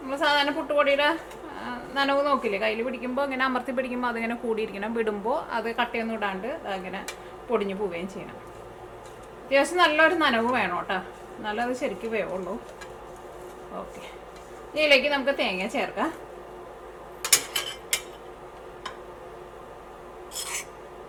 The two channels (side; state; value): both; identical; correlation 1.00